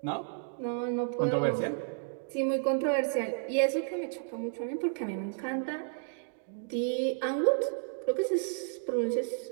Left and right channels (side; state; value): left; silent; digital silence